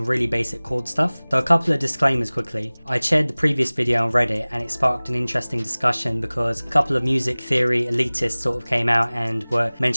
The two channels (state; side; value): inverted; both; correlation -1.00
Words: really basic chord stuff. So a couple of disclaimers quickly. I shared the previous video on Reddit and it sparked an interesting discussion because a couple of music theory elitists sort of came out and were